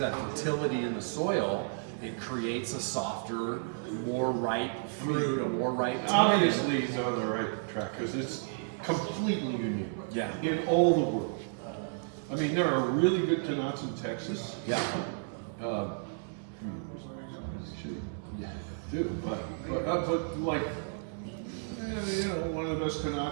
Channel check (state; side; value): silent; left; 56 dB below the other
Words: of that fertility in the soil, it creates a softer, more ripe fruit, a more ripe tannin. Obviously, he's on the right track because it's completely unique. Yeah. In all the world. I mean, there are really good Tannats in Texas. Yeah. Yeah, do, but like, you know, one of the best